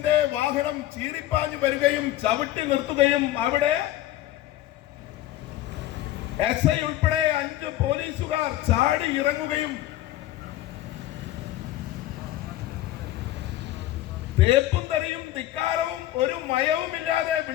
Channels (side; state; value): right; quieter; 14.5 dB